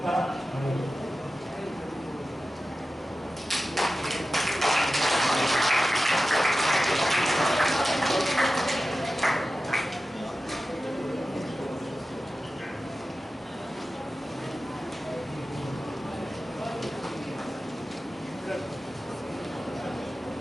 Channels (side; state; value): both; normal; correlation 0.94